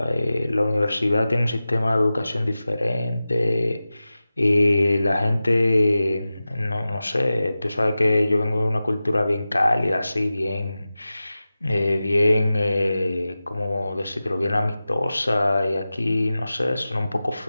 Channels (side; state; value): both; inverted; correlation -0.95